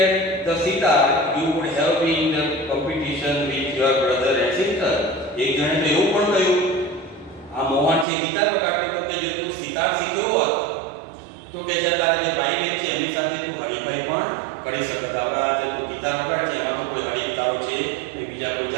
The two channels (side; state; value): left; drops out; at 8.1 s